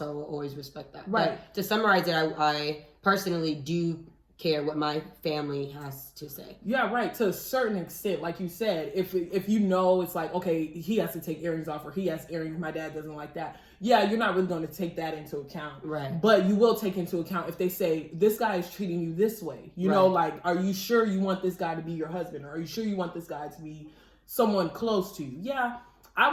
I will always respect that. Right. But to summarize it, I personally do care what my family has to say. Yeah, right. To a certain extent, like you said, if you know it's like, okay, he has to take earrings off, or he has earrings, my dad doesn't like that. Yeah, you're not really going to take that into account. Right. But you will take into account if they say, this guy is treating you this way. You know, like, are you sure you want this guy to be your husband? Or are you sure you want this guy to be someone close to you? Yeah, I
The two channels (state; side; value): identical; both; correlation 1.00